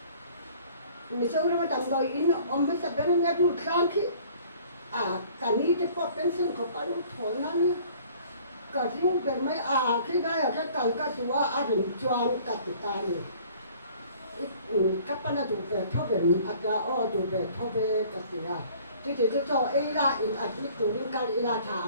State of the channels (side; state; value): both; inverted; correlation -0.53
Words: mình sau đó tầm đôi in ông mới sắp đến nghe chút sáng khi cả ní thì có bên sinh có phải lúc thổi nó nhá cả riêng về mấy khi đây là cái cần cái gì á rồi choang cả tụi ta này các bạn là tụi về thâu về tụi về thâu về cái gì thì cho ấy là in admit tụi mình cái là